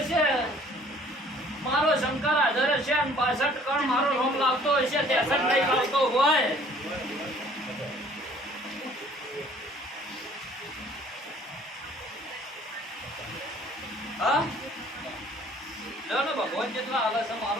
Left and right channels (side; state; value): both; normal; correlation 0.55